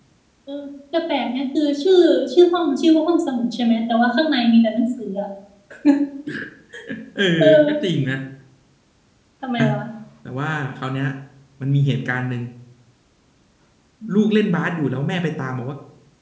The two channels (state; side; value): identical; both; correlation 1.00